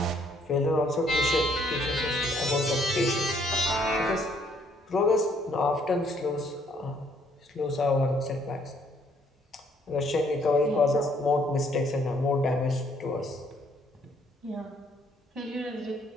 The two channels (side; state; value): both; normal; correlation 0.66